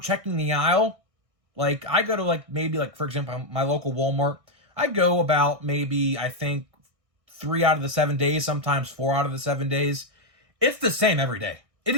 checking the aisle. Like I go to maybe for example, my local Walmart. I go about maybe, I think, 3 out of the 7 days, sometimes 4 out of the 7 days. It's the same every day. It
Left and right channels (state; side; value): late; left; 1.6 ms